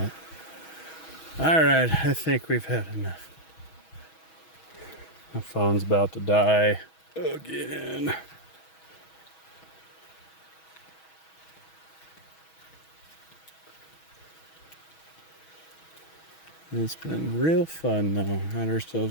Alright, I think we've had enough. My phone's about to die again. It's been real fun though. Had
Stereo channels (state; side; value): late; right; 6.2 ms